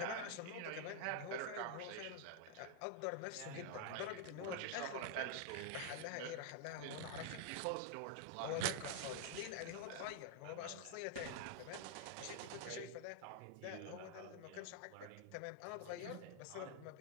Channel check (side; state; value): both; different; correlation 0.00